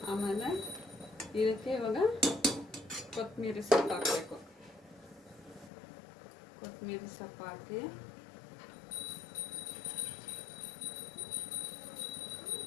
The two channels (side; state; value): right; drops out; at 5.7 s